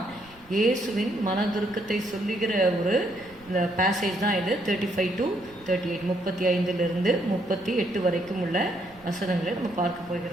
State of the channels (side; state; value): right; noise; rumble, 26 dB below the sound